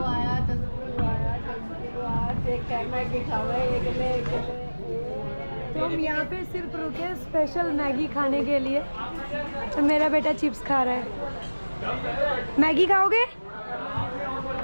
तो हम यहाँ पे सिर्फ रुके स्पेशल मैगी खाने के लिए, तो मेरा बेटा चिप्स खा रहा है। मैगी खाओगे?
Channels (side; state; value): both; inverted; correlation -1.00